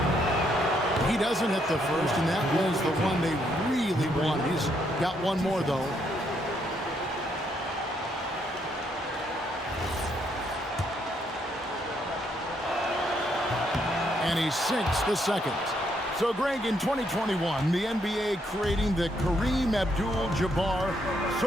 He doesn't hit the first, and that was the one they really wanted. He's got one more, though. And he sinks the second. So, Greg, in 2021, the NBA creating the Kareem Abdul-Jabbar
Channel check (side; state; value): both; normal; correlation 0.74